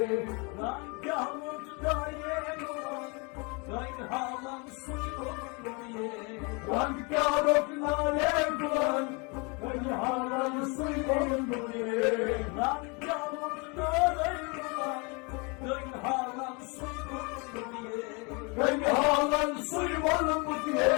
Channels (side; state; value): right; quieter; 30.8 dB